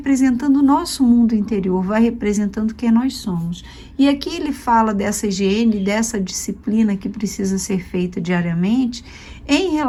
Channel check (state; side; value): identical; both; correlation 1.00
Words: o nosso mundo interior, vai representando quem nós somos. E aqui ele fala dessa higiene, dessa disciplina que precisa ser feita diariamente em